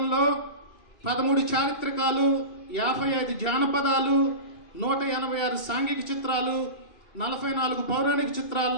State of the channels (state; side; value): late; right; 2.4 ms